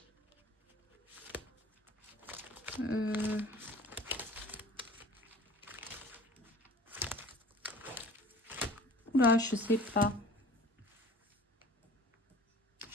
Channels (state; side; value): normal; both; correlation 0.46